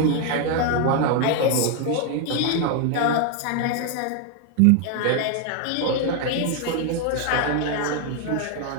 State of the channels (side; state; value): both; different; correlation 0.01